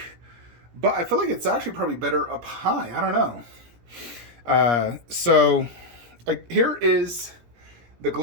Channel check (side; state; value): left; late; 17 ms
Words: but I feel like it's actually probably better up high. I don't know. Here is the